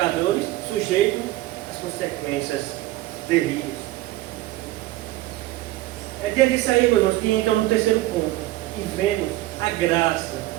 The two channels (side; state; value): left; quieter; 16.7 dB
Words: sujeitos às consequências terríveis. É diante disso aí, meus irmãos, que entra no terceiro ponto, e vemos a graça